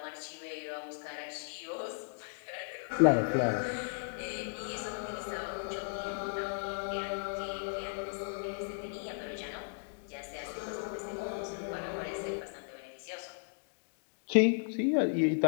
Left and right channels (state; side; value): silent; right; digital silence